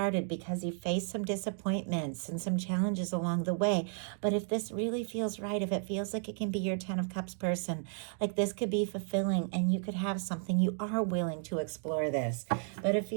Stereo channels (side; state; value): left; silent; 56 dB below the other